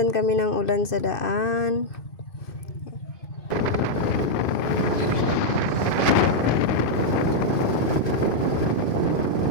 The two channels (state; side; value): late; right; 2.5 ms